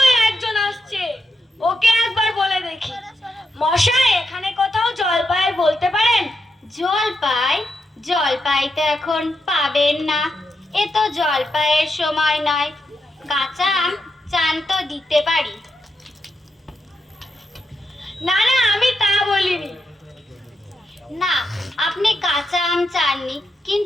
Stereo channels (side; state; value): both; normal; correlation 0.85